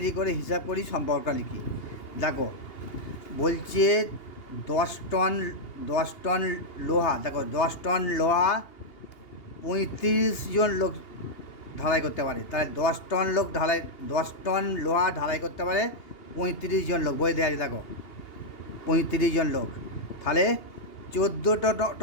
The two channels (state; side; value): late; right; 2.8 ms